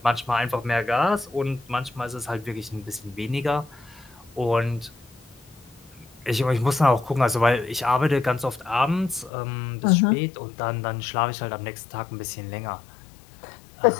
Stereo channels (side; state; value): right; drops out; at 9.3 s